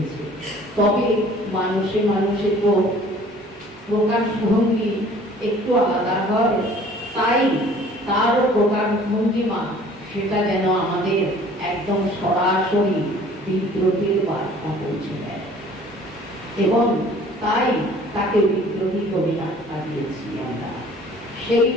তবে মানুষে মানুষে তো প্রকাশভঙ্গি একটু আলাদা হয়, তাই তারও প্রকাশভঙ্গিমা সেটা যেন আমাদের একদম সরাসরি বিদ্রোহের বার্তা পৌঁছে দেয় এবং তাই তাকে বিদ্রোহী কবি আখ্যা দিয়েছি আমরা। সেই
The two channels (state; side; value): normal; both; correlation 0.52